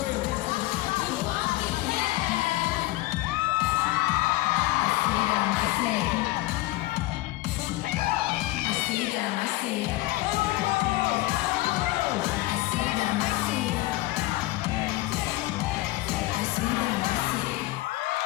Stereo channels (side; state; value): right; quieter; 18.5 dB